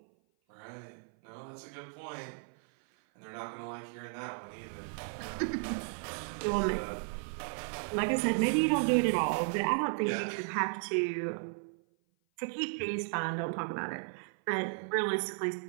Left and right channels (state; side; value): silent; left; 55 dB below the other